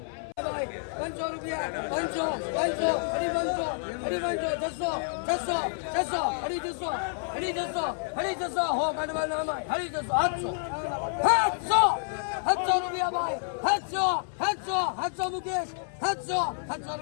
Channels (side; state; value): right; silent; 58 dB below the other